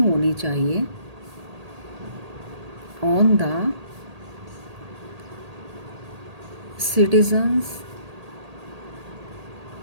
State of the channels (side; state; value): left; late; 1.8 ms